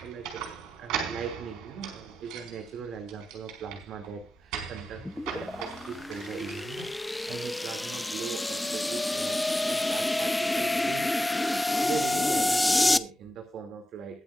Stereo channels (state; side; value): normal; both; correlation 0.90